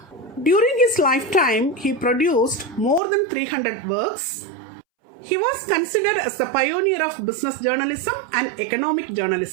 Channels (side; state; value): left; drops out; at 3.0 s